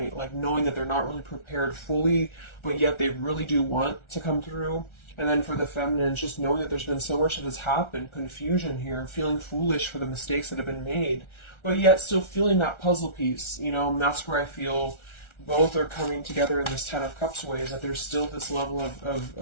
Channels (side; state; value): right; late; 1.4 ms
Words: like knowing that they're not really prepared fully, but yet they really do want to come through. And then for the feminines, just knowing that there's been so much that has happened, confusion here, feeling foolish for the mistakes that have been made, but yet still feeling that puzzle piece, you know, and that's where I feel both are coming together in this Ten of Cups ways, that there's still this level